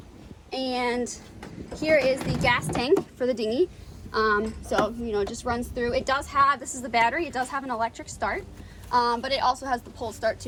And here is the gas tank for the dinghy. So, you know, it just runs through. It does have, this is the battery, it does have an electric start, but it also has the pull start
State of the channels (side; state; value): both; identical; correlation 1.00